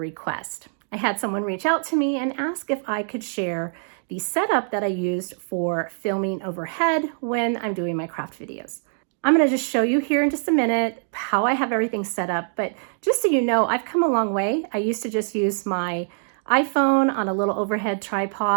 I had someone reach out to me and ask if I could share the setup that I used for filming overhead when I'm doing my craft videos. I'm going to just show you here in just a minute how I have everything set up, but just so you know, I've come a long way. I used to just use my iPhone on a little overhead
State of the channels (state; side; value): silent; left; digital silence